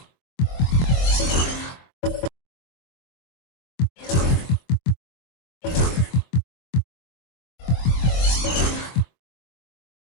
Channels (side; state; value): right; late; 23 ms